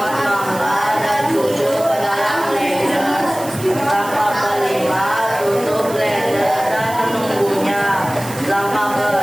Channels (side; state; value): right; noise; hiss, 14 dB below the sound